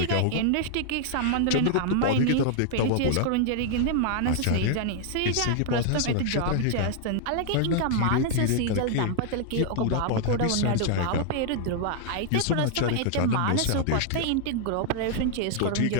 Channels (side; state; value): both; different; correlation 0.00